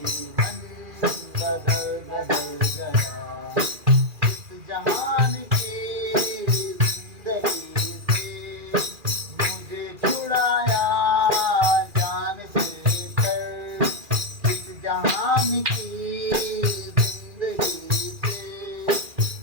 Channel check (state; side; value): late; left; 2.4 ms